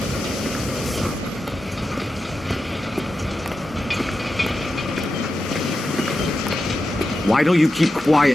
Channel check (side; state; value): both; normal; correlation 0.90